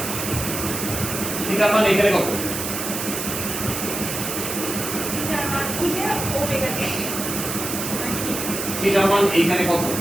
থিটা মান এখানে কত থিটা মান এখানে কত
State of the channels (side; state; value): right; noise; hiss, 4 dB below the sound